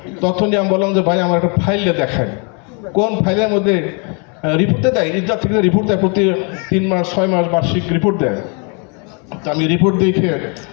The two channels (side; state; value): right; quieter; 35.7 dB